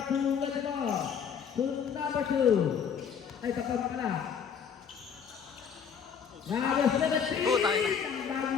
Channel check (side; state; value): right; quieter; 7.2 dB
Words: 2 with the ball. To number 2. Ay, tapos pala. Number 17. Ang